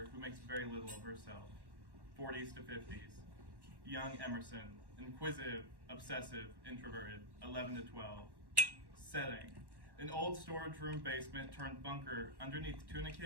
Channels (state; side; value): late; left; 1.1 ms